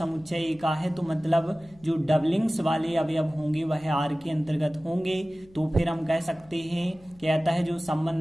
ए का है तो मतलब जो डबलिंग्स वाले अवयव होंगे वह आर के अंतर्गत होंगे। तो फिर हम कह सकते हैं कहता है जो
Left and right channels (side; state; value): left; noise; hum, 26 dB below the sound